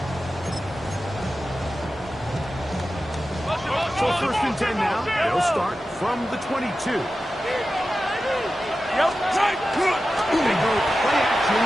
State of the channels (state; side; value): normal; both; correlation 0.93